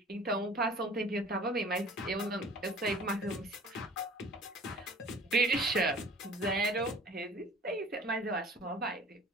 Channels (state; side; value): normal; both; correlation 0.46